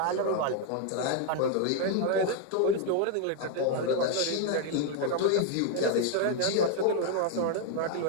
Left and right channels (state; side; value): different; both; correlation 0.01